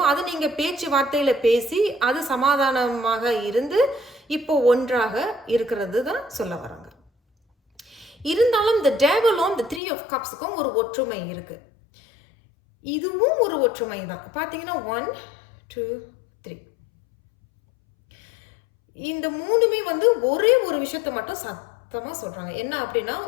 அது நீங்க பேச்சுவார்த்தையில பேசி, அது சமாதானமாக இருந்து, இப்போ ஒன்றாக இருக்கிறது தான் சொல்ல வராங்க. இருந்தாலும் இந்த டேவலும் இந்த 3 ஆஃப் கப்ஸுக்கும் ஒரு ஒற்றுமை இருக்கு. இதுவும் ஒரு ஒற்றுமை தான். பார்த்தீங்கன்னா 1, 2, 3. இந்த 3மே வந்து ஒரே ஒரு விஷயத்த மட்டும் சத்தமா சொல்றாங்க. என்ன அப்படின்னா,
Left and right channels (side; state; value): right; drops out; at 9.8 s